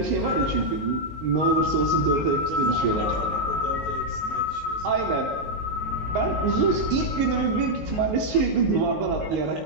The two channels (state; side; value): late; left; 19 ms